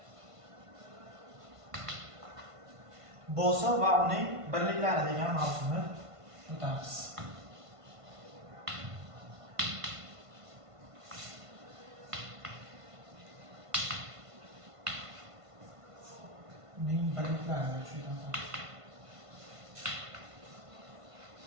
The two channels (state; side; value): late; left; 1.5 ms